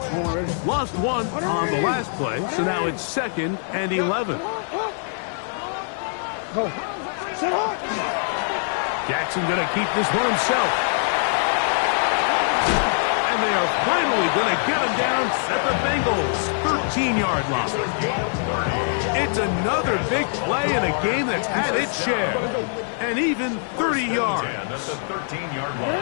Lost one on the last play, so now it's second and 11. Jackson going to keep this one himself. And they are finally going to get him down at the Bengals' 13-yard line. It's another big play in a game that's had its share. And even 30 yards. At the 13-yard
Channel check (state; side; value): silent; right; digital silence